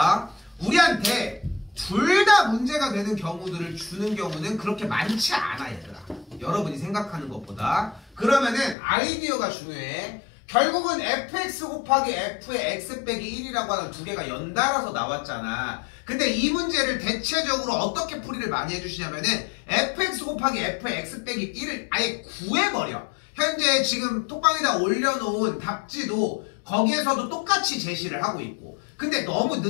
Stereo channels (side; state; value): right; drops out; at 8.8 s